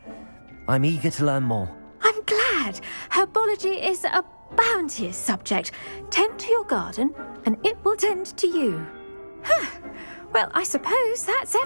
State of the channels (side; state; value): both; inverted; correlation -1.00